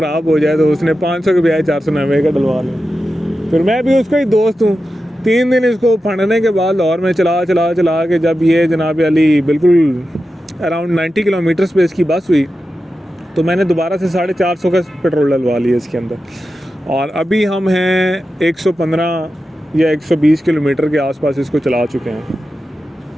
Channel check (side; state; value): both; normal; correlation 0.91